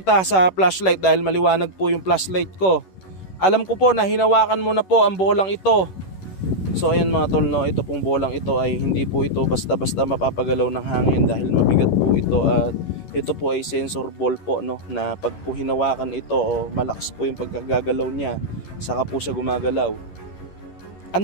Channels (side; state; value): right; late; 11 ms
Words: sa flashlight dahil maliwanag po yung flashlight ko. Alam ko po na hinawakan mo na po ang bolang ito. So ayan mga tol, ito pong bolang ito ay hindi po ito basta-basta mapapagalaw ng hangin dahil mabigat po ito, at Ito po ay sensor ball po, no, na pag po hinawakan ito o malakas po yung pagkagagalaw niya, saka po siya gumagalaw.